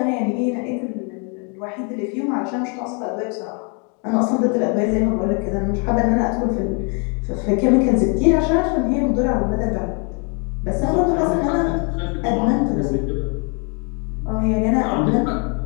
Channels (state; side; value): quieter; right; 36.4 dB